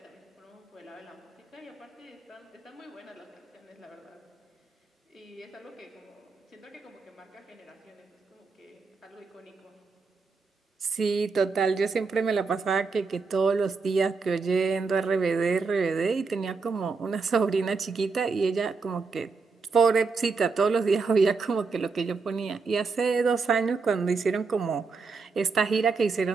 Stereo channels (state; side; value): quieter; left; 4.6 dB